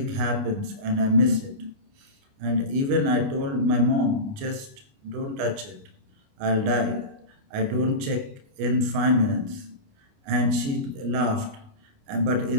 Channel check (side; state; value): left; late; 29 ms